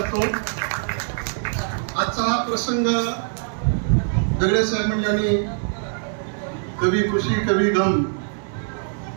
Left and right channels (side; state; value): left; silent; 63 dB below the other